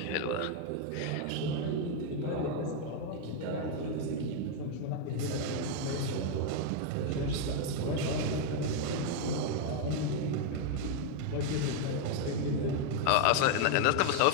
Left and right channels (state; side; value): different; both; correlation 0.01